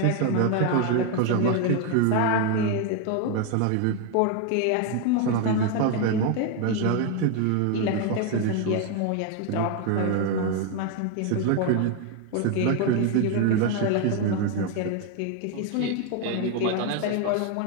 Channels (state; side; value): different; both; correlation 0.01